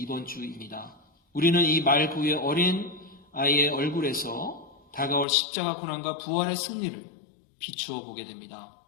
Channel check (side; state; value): right; drops out; at 5.2 s